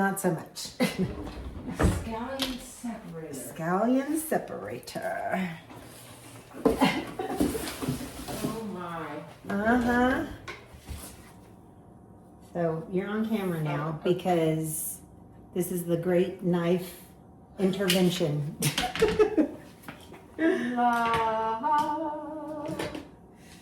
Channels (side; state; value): both; identical; correlation 1.00